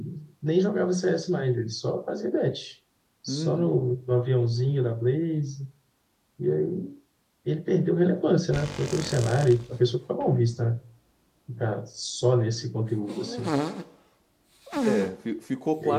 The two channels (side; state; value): both; identical; correlation 1.00